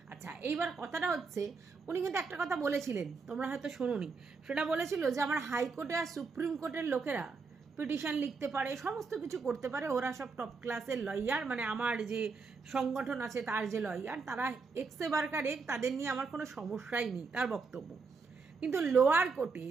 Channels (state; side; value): quieter; left; 4.6 dB